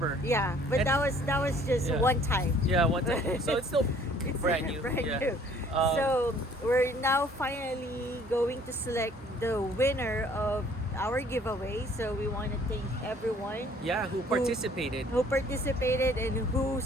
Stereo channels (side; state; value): both; normal; correlation 0.57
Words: Yeah, but And- that was just one time. Yeah, one time. So it's still It's brand new. brand Yeah. new. So we're now finally going to select the winner of our giveaway. So we want to thank everyone Yeah, who participated. who participated and who